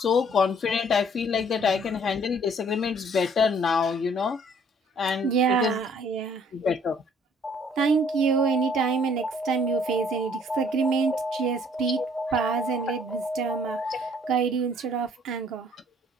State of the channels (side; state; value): both; normal; correlation 0.60